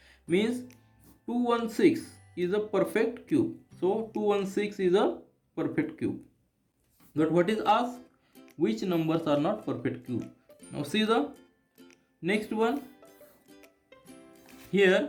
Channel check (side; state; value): both; identical; correlation 1.00